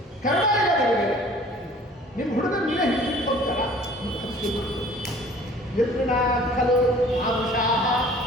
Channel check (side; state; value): both; normal; correlation 0.50